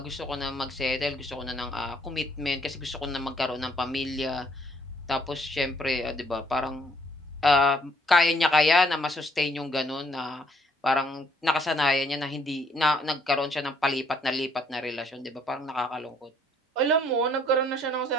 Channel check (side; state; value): both; normal; correlation 0.66